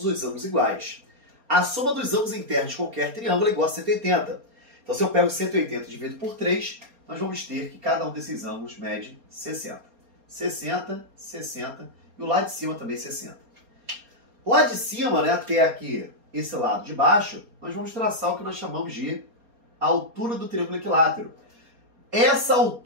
os ângulos iguais. A soma dos ângulos internos de qualquer triângulo é igual a 180. Então, se eu pego 180 e divido por 3, nós vamos ter que cada um desses ângulos mede 60. 60, 60 e o lado de cima também 60. Lá de cima, né, até aqui, esse lado de baixo, nós vamos traçar o que nós chamamos de altura do triângulo equilátero. Essa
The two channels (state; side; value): late; left; 4.3 ms